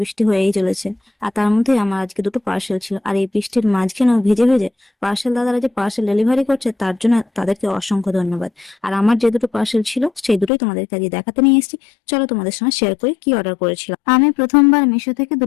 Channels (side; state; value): right; drops out; at 10.5 s